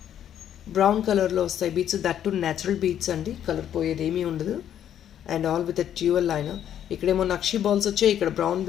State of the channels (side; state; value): right; quieter; 10.1 dB